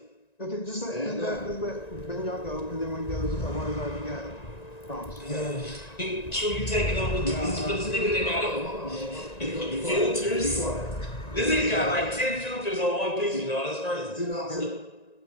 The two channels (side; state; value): right; late; 1.9 ms